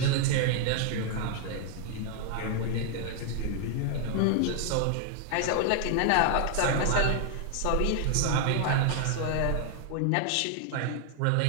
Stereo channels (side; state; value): both; different; correlation 0.00